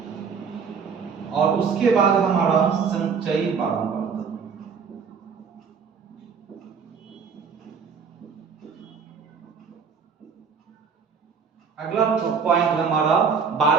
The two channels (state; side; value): quieter; left; 6.0 dB